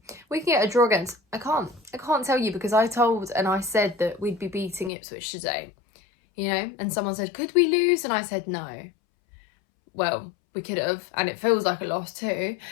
we can get a draw against... I can't tell you, because I told and I said that we'd be beating Ipswich today, you know, and someone said, could we lose? And I said no. Well, we could have, and it feels like a loss too,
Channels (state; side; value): drops out; right; at 4.9 s